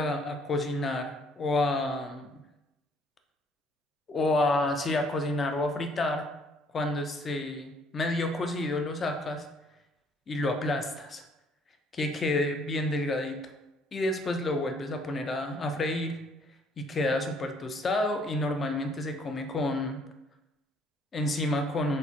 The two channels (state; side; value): normal; both; correlation 0.63